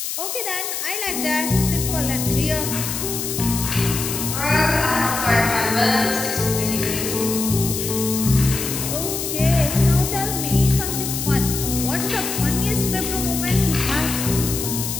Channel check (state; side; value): noise; left; hiss, 4 dB below the sound